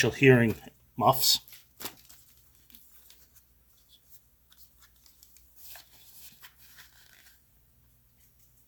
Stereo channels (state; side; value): identical; both; correlation 1.00